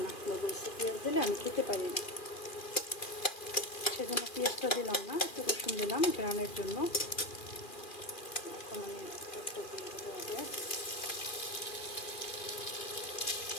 না, বলছে পেঁয়াজ দিলে আমি খেতে পারি না, সেজন্য পেঁয়াজটা দিলাম না, একটু রসুন দিলাম গ্রানের জন্য। এখন আমি একটা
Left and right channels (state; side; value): late; right; 2.4 ms